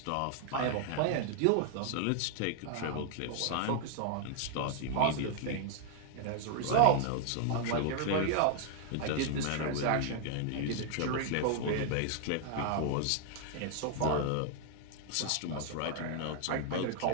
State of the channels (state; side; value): different; both; correlation 0.00